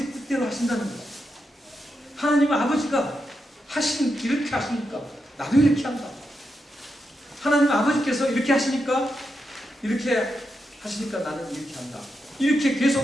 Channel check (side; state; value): both; normal; correlation 0.85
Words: 뜻대로 하신다는 거예요. 하나님은 아버지가 이렇게 하시니까 나도 이렇게 한다. 하나님 아버지께서 이렇게 하시니까 나는 이렇게 한다. 이렇게